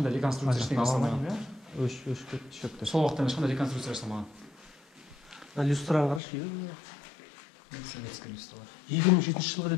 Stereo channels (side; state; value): right; drops out; at 6.2 s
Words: реконструкция ештеңе жасалмаған. Өшіп шөкті. Сол уақытта ешқандай реконструкция жасалмаған. Люстраны қарашы. Советский люстралар. 2007 жылға